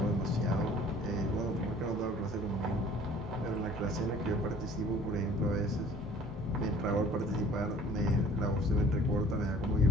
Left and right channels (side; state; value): both; normal; correlation 0.54